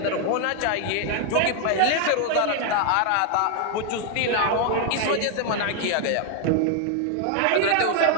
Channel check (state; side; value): different; both; correlation 0.00